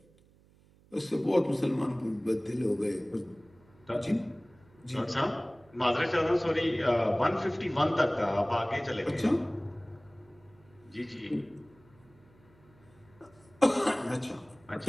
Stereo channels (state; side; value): noise; right; hum, 29 dB below the sound